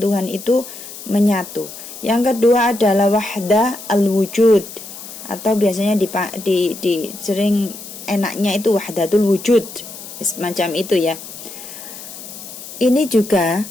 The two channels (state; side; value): noise; left; hiss, 13 dB below the sound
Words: itu menyatu. Yang kedua adalah wahdah al-wujud, atau biasanya di sering enaknya itu wahdatul wujud, semacam itu ya. Ini juga